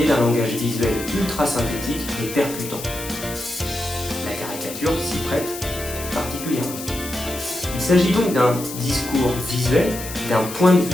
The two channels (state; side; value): noise; left; hiss, 10 dB below the sound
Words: d'un langage visuel ultra synthétique et percutant. La caricature s'y prête particulièrement. Il s'agit donc d'un discours visuel, d'un point de